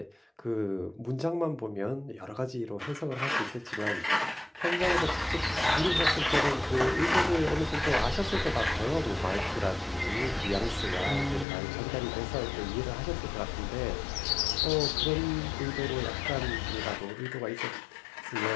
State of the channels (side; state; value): right; drops out; at 11.5 s